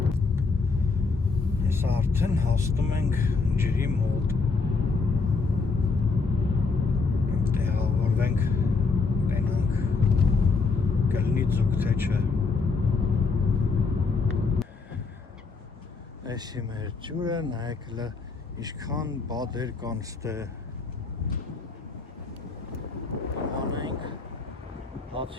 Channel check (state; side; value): quieter; right; 4.3 dB